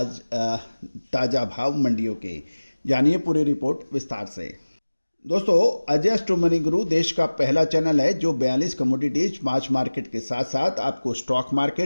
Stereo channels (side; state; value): both; inverted; correlation -1.00